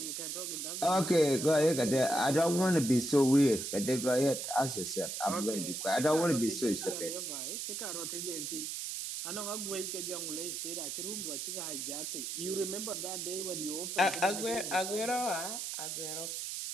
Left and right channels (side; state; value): right; noise; hiss, 5 dB below the sound